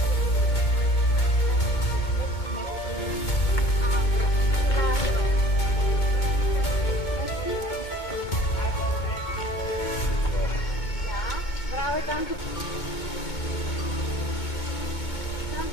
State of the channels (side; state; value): right; late; 2.2 ms